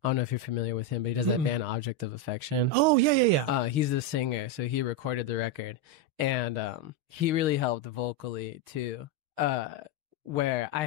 I don't know if you're familiar with him, but he does that band Object of Affection. Oh, yeah. He's the singer, so he recorded the record. And he really helped vocally, too, where I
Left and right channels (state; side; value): late; left; 6.5 ms